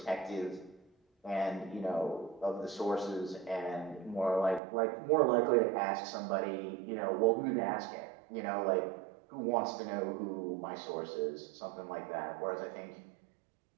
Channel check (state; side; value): drops out; left; at 4.6 s